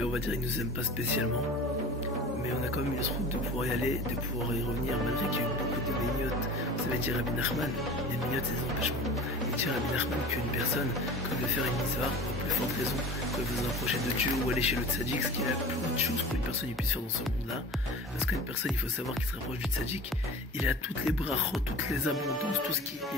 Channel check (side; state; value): both; normal; correlation 0.37